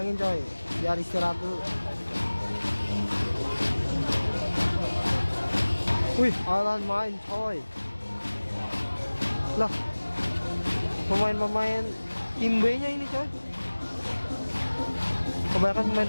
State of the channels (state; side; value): inverted; both; correlation -1.00